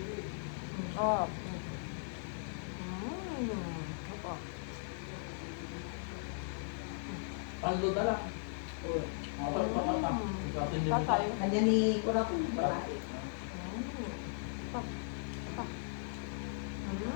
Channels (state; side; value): silent; right; digital silence